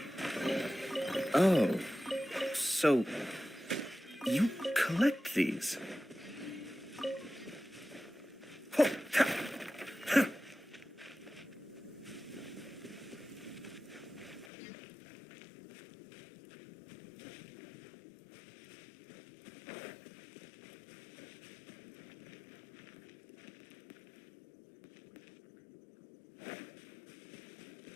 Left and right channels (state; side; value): drops out; right; at 14.5 s